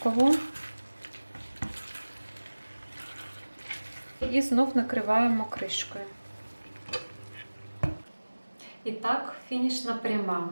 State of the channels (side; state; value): both; inverted; correlation -1.00